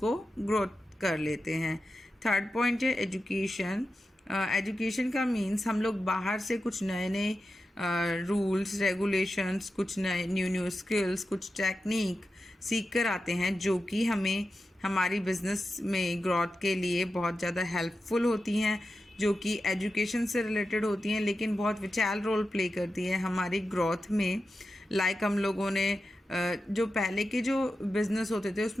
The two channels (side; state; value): both; normal; correlation 0.91